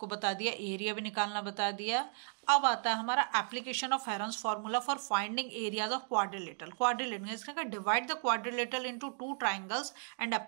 बता दिया, एरिया भी निकालना बता दिया। अब आता है हमारा application of Heron's formula for finding areas of quadrilateral. Quadrilateral इसका divide the quadrilateral into 2 triangles and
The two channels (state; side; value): silent; left; 54 dB below the other